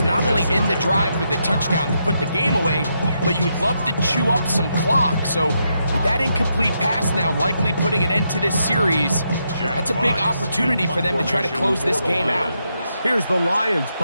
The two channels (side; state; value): both; inverted; correlation -0.81